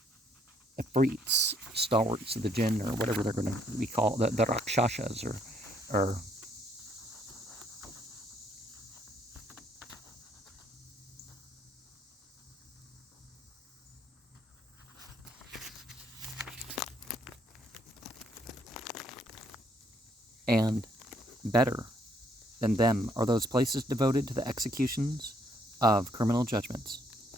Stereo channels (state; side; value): normal; both; correlation 0.68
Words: Ifrits, stalwarts of the jinn, or whatever they're going to be called, the Rakshasas, or and better than them are those places devoted to the executions of criminal judgments.